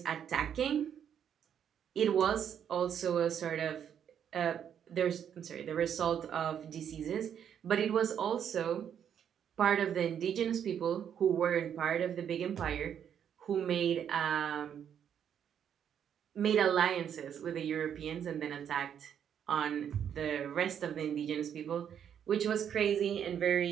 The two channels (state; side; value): quieter; left; 8.7 dB